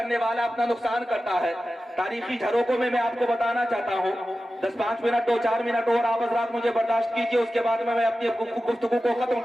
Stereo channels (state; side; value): normal; both; correlation 0.94